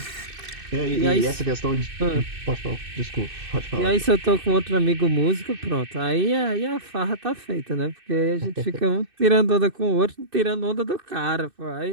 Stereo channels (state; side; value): late; left; 2.6 ms